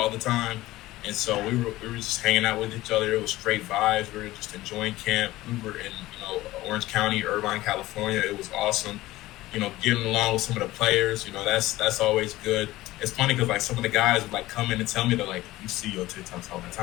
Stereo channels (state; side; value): quieter; right; 17.4 dB